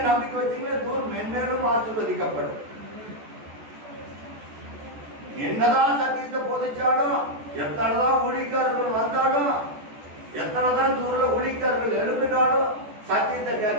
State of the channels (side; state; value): left; late; 14 ms